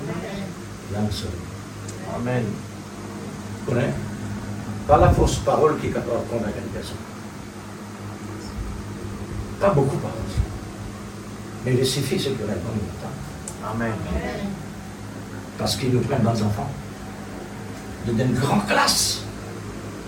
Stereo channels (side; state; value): both; identical; correlation 1.00